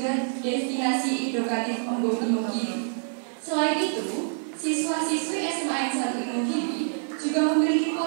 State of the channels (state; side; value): silent; left; 56 dB below the other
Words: destinasi edukatif Embung Imogiri. Selain itu, siswa-siswi SMA 1 Imogiri juga memiliki